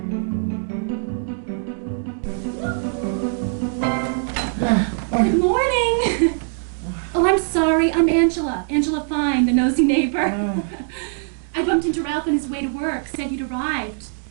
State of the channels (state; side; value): silent; left; digital silence